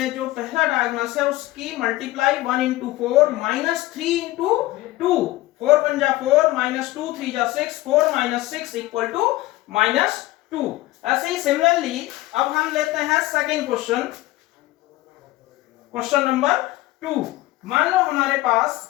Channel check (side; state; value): right; quieter; 17.9 dB